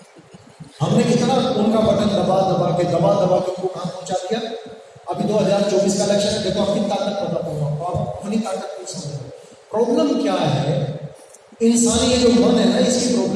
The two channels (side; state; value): both; identical; correlation 1.00